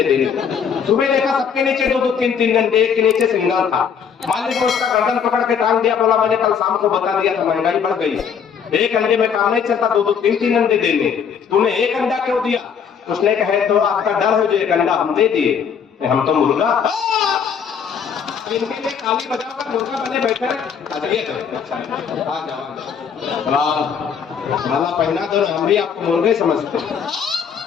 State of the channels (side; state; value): right; quieter; 7.1 dB